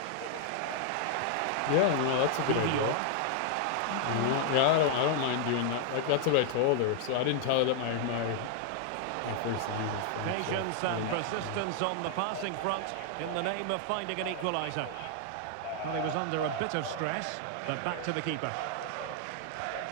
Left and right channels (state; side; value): different; both; correlation 0.00